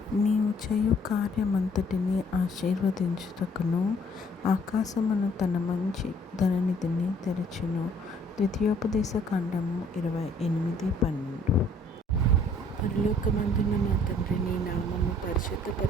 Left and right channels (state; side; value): normal; both; correlation 0.60